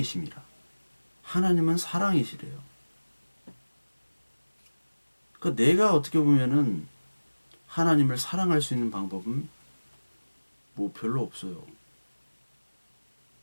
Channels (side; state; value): both; inverted; correlation -1.00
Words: 하나님은 사랑이시래요. 그러니까 내가 어떻게 보면은 하나님을 사랑할 수 있는 방법은 뭐 별로 없어요.